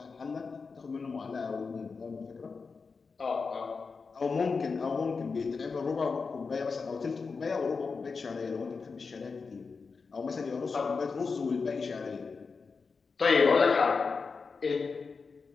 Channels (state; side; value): quieter; right; 4.8 dB